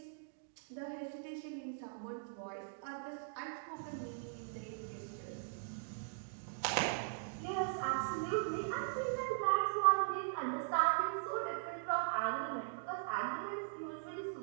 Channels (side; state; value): left; silent; digital silence